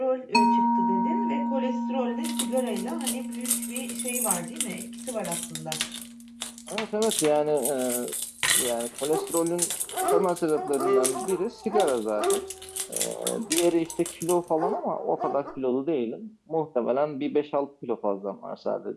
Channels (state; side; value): identical; both; correlation 1.00